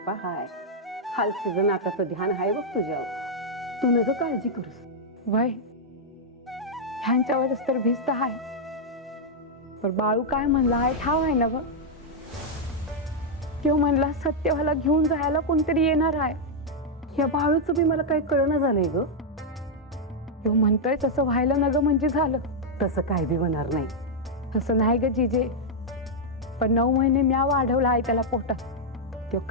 हाय. हालसीचं नाताचं ध्यान हाय बघ तुझ्यावर. तू नग काळजी करूस. वय ह्यांच्यावरच तर भिस्त हाय. पण बाळू काय म्हणला आहे ठाव आहे ना ग. तो म्हणला सत्यवाला घेऊन जायला कोणतरी येणार आहे. या बाळूचं बी मला काही कळणं झालंय ग. तो म्हणतोय तसं व्हायला न ग म्हणजे झालं. तसं काय बी होणार नाही. तसं नाही ग जिजे. पण 9 महिने म्या वाढवला आहे त्याला पोटात. तो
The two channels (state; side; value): normal; both; correlation -0.04